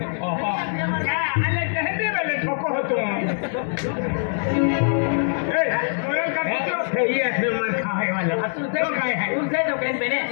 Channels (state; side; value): silent; right; digital silence